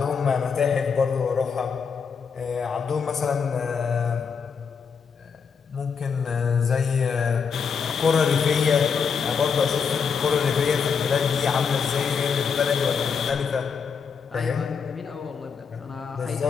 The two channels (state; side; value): quieter; right; 6.1 dB